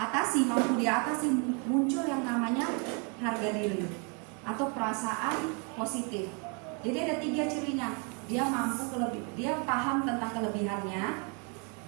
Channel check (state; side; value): quieter; left; 35.9 dB